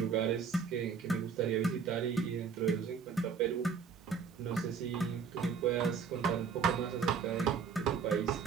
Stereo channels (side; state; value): left; quieter; 6.1 dB